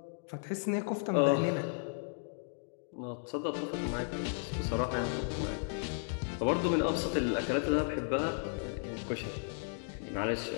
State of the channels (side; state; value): right; silent; digital silence